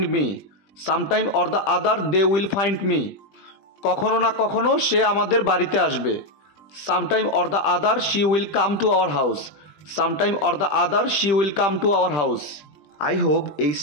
me, sometime or the other they will find me. কখনো না কখনো সে আমাদের বাড়িতে আসবে, sometime or the other she will come to our house, sometime or the other she will come to our house. I hope এই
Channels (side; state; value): right; late; 20 ms